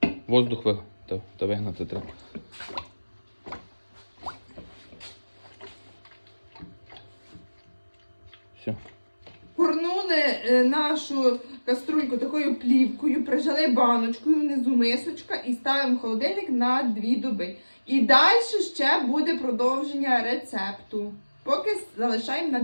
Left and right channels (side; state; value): both; inverted; correlation -1.00